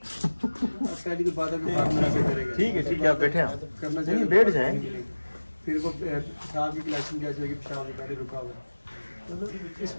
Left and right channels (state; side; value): inverted; both; correlation -1.00